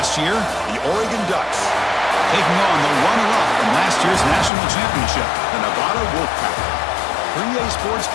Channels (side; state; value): right; drops out; at 4.5 s